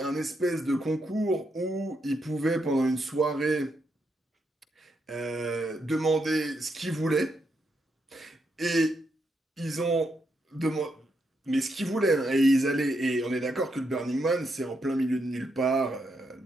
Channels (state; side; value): normal; both; correlation 0.80